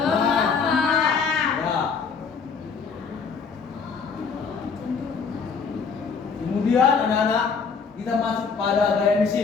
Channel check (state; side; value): quieter; right; 5.5 dB